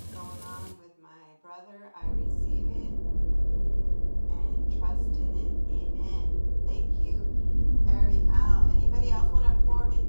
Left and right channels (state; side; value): inverted; both; correlation -1.00